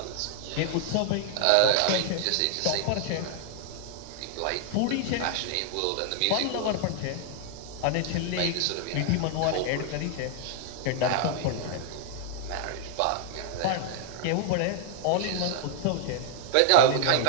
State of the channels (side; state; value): both; different; correlation 0.00